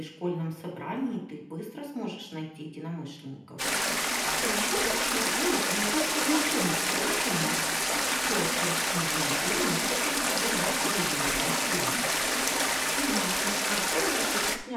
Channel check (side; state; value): both; identical; correlation 1.00